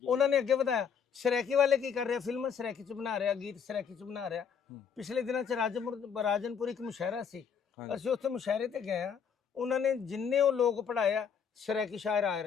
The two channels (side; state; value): right; quieter; 7.1 dB